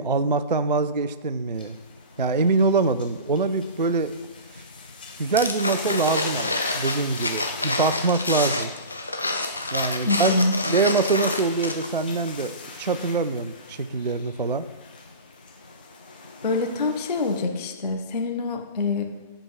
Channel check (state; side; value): inverted; both; correlation -0.32